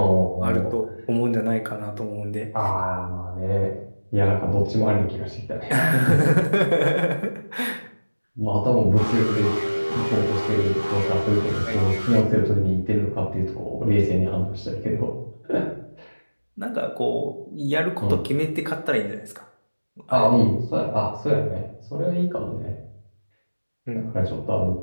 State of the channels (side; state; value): both; inverted; correlation -1.00